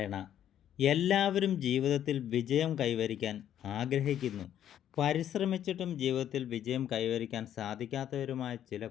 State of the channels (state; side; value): quieter; right; 10.6 dB